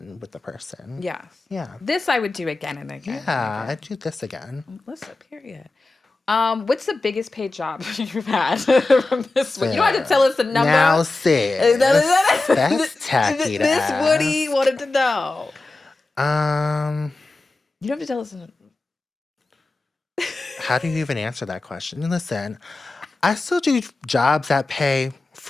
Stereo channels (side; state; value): right; quieter; 3.2 dB